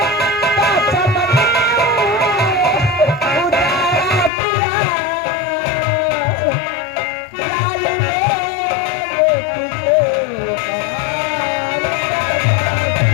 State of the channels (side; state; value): right; drops out; at 4.3 s